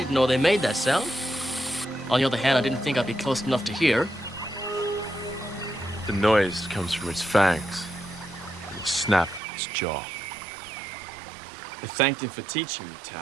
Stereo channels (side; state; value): left; drops out; at 9.4 s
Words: know they made that sound. On the other hand, I didn't think I'd be close enough to hear. The noise comes from its fangs, and the snap of its jaw. I thanked him for teaching me,